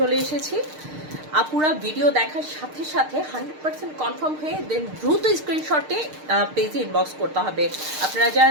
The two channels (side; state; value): left; late; 6.6 ms